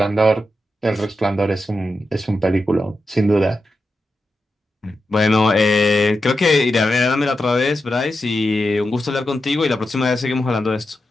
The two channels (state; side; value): normal; both; correlation 0.88